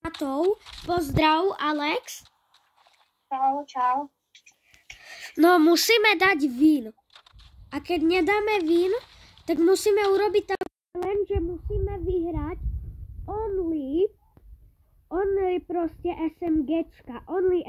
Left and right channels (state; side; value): identical; both; correlation 1.00